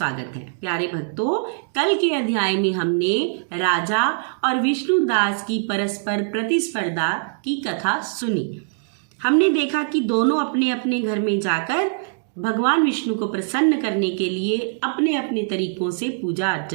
है। प्यारे भक्तों, कल के अध्याय में हमने राजा और विष्णुदास की परस्पर प्रतिस्पर्धा की कथा सुनी। हमने देखा कि दोनों अपने अपने घर में जाकर भगवान विष्णु को प्रसन्न करने के लिए अपने अपने तरीकों से पूजा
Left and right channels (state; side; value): silent; left; digital silence